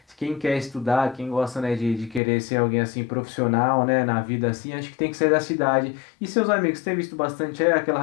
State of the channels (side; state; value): right; drops out; at 2.2 s